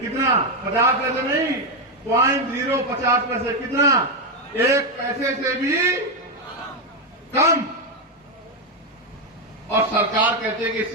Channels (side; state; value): both; normal; correlation 0.06